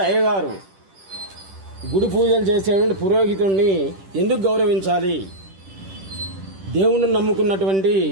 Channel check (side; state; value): left; late; 10 ms